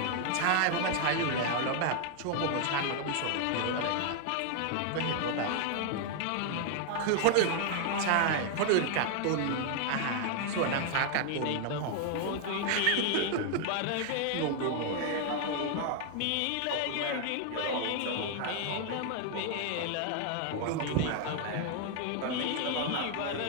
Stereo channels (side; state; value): both; different; correlation 0.00